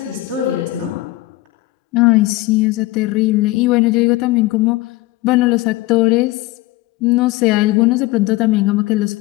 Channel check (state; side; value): quieter; right; 18.8 dB